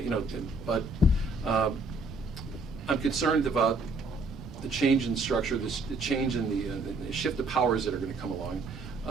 But I'm concerned about the change in structure, the change in the shift of powers that are going to come along,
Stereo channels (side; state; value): left; quieter; 3.1 dB